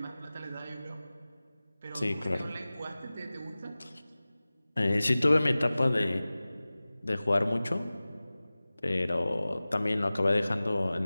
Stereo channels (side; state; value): both; inverted; correlation -0.98